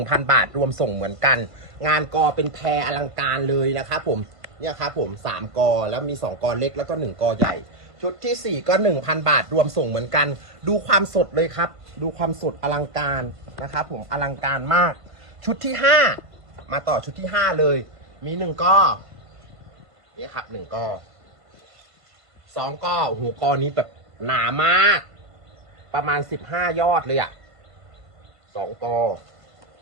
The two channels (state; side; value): late; left; 1.5 ms